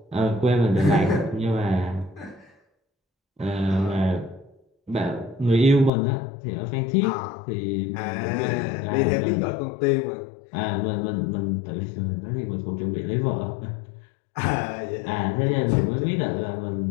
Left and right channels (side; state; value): right; drops out; at 5.9 s